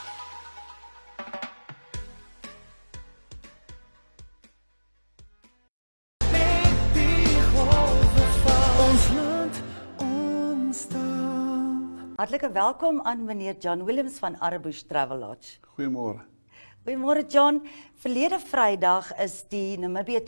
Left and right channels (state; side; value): inverted; both; correlation -1.00